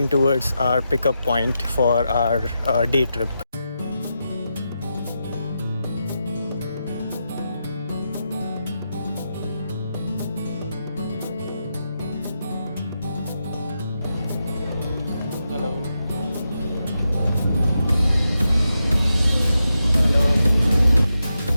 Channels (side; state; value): both; inverted; correlation -0.87